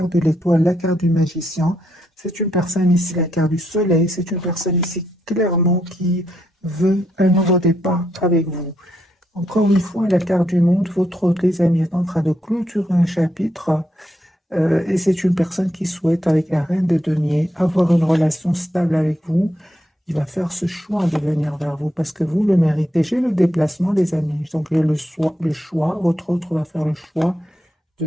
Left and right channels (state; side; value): normal; both; correlation 0.79